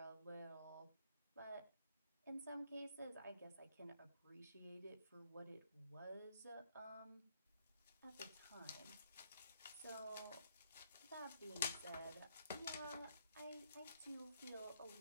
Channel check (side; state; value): both; inverted; correlation -0.71